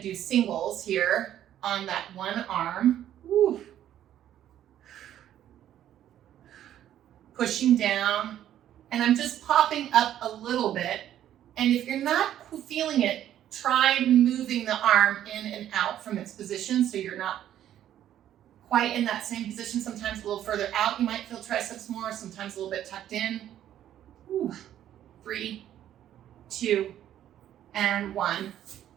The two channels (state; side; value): quieter; left; 11.4 dB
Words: do singles here on that one arm. Woo. Pushing down, and I'm just popping up a little bit. And if you're not feeling it, try moving the arm in and out from its position so you're not quite in that same position. Sometimes a little further out, you might feel triceps more, sometimes a little bit tucked in. Woo. 3, 2, and 1.